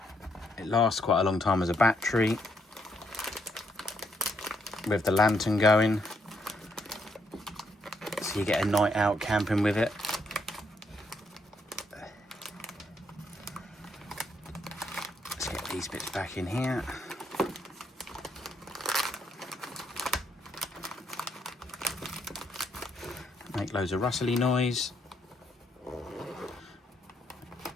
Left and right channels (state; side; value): normal; both; correlation 0.74